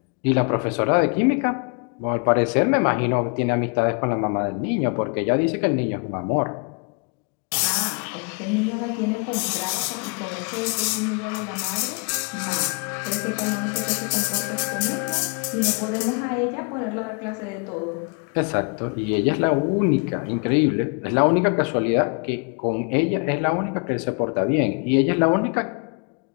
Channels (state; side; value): quieter; right; 34.8 dB